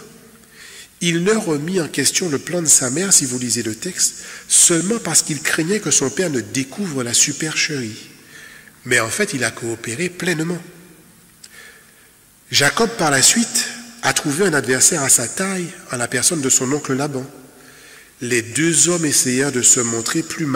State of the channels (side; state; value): both; identical; correlation 1.00